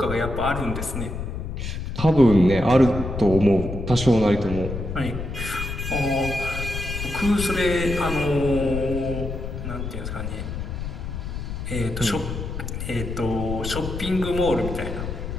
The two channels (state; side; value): noise; left; rumble, 5 dB below the sound